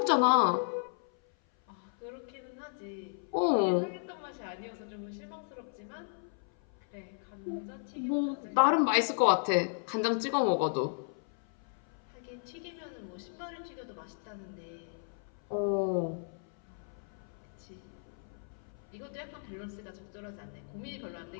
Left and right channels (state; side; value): silent; right; 55 dB below the other